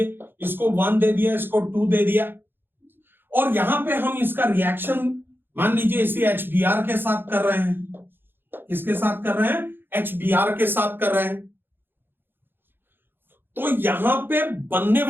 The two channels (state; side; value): late; left; 0.10 ms